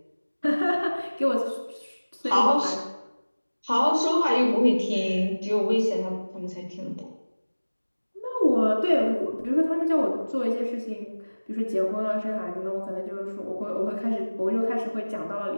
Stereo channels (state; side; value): inverted; both; correlation -1.00